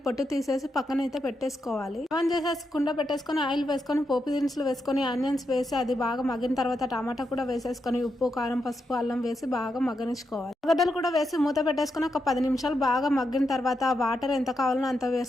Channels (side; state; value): both; normal; correlation 0.84